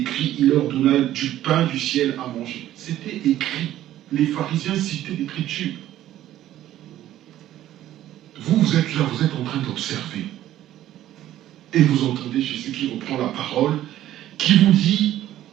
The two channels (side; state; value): left; quieter; 13.1 dB